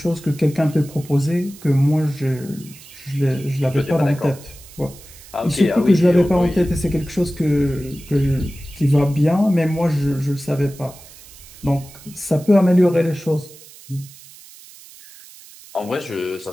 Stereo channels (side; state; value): right; noise; hiss, 20 dB below the sound